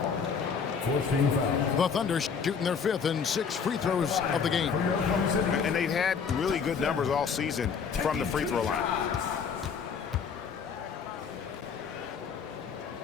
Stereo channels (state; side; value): quieter; right; 6.2 dB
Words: The Thunder shooting their 5th and 6th free throws of the game. And they've had really good numbers all season from the free throw line.